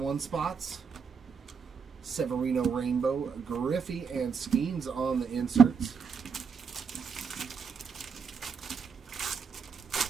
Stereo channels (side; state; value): left; quieter; 6.0 dB